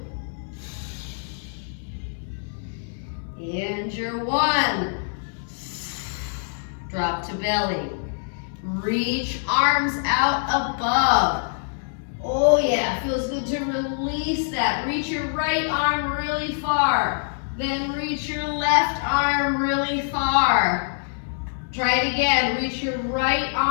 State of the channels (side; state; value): right; silent; 62 dB below the other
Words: And your 1. Drop to belly. Reach arms out above. Oh yeah, feels good to release that. Reach your right arm really far. Then reach your left arm really far. Try it again. Reach your right